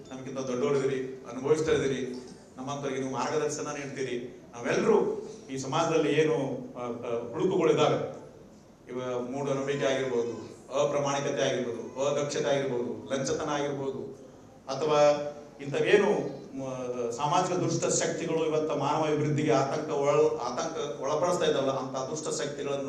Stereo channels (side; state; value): both; identical; correlation 1.00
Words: ನಮ್ಗಿಂತ ದೊಡ್ಡವರಿದ್ದೀರಿ, ಅನುಭವಿಸ್ತಾ ಇದ್ದೀರಿ, ನಮ್ಮಂತವರಿಗೆ ನೀವು ಮಾರ್ಗದರ್ಶನ ನೀಡ್ತೀರಿ. ನಾವೆಲ್ಲರೂ ಈ ಸಮಾಜದಲ್ಲಿ ಏನು ಹುಡುಕುಗಳಿದ್ದಾವೆ, ಇವ ಮೂಢನಂಬಿಕೆ ಆಗಿರ್ಬೋದು, ಅಪ್ರಾಮಾಣಿಕತೆ ಆಗಿರ್ಬೋದು, ಅದಕ್ಷತೆ ಆಗಿರ್ಬೋದು, ಲಂಚತನ ಆಗಿರ್ಬೋದು, ಅಥವಾ ಇಂಥವೇನು ಸಾಮಾಜಿಕ ದುಷ್ಟ ಶಕ್ತಿಗಳು ಇವತ್ತು ಮಾನವ ಅಭಿವೃದ್ಧಿಗೆ ಆತಂಕ ಒಳಪಡಿಸ್ತಾ ಇದ್ದಾವಲ್ಲ, ಅಂತ ದುಷ್ಟ